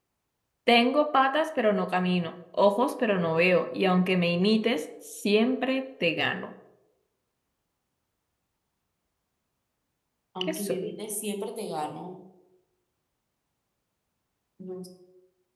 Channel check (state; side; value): identical; both; correlation 1.00